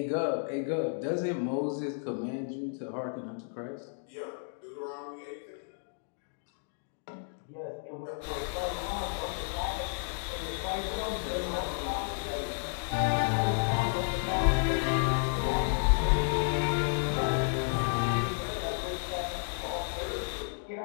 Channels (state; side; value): silent; right; digital silence